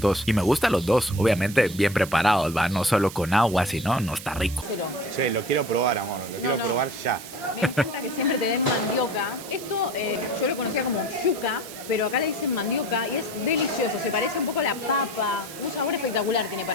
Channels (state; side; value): noise; right; hiss, 13 dB below the sound